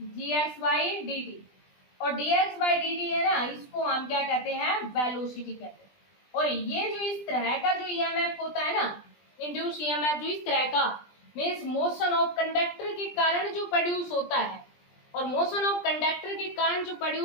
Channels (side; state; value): right; late; 20 ms